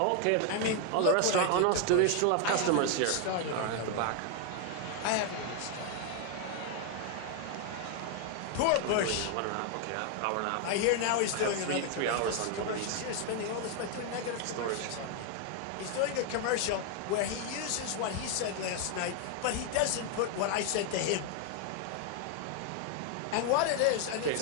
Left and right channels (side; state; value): both; different; correlation 0.00